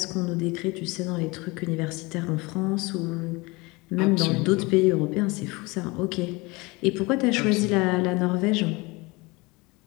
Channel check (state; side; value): quieter; right; 24.7 dB